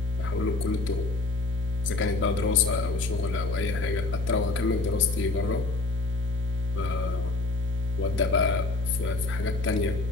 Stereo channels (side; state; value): right; quieter; 3.3 dB